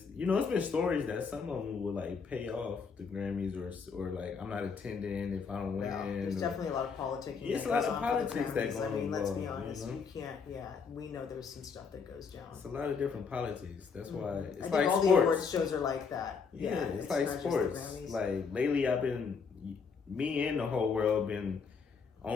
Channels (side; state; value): right; quieter; 5.5 dB